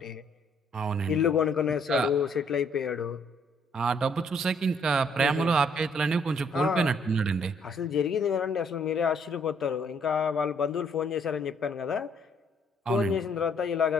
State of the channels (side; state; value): both; normal; correlation 0.66